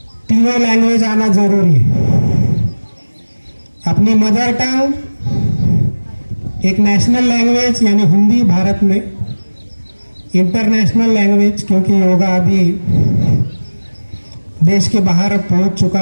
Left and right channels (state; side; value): inverted; both; correlation -1.00